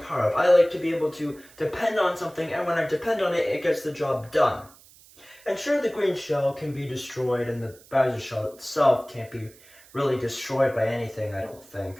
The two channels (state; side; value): noise; right; hiss, 25 dB below the sound